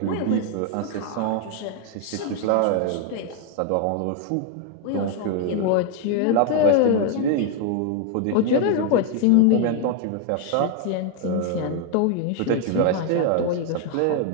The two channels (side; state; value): both; different; correlation 0.00